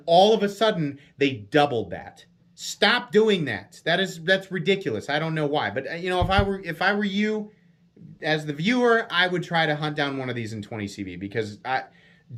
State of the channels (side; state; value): both; identical; correlation 1.00